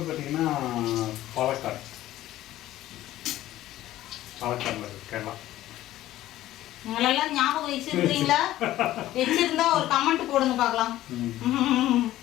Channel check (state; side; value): quieter; right; 14.5 dB